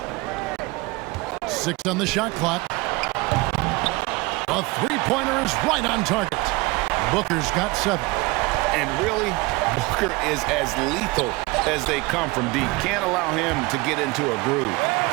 Six on the shot clock. A three-pointer is right on target. Booker's got 7. And really, Booker is as lethal as they come from deep. Can't allow him to get into a groove.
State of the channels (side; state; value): left; quieter; 23.6 dB